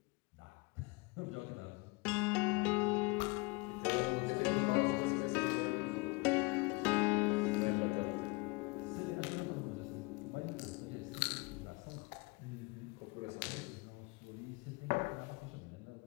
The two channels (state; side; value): quieter; right; 26.9 dB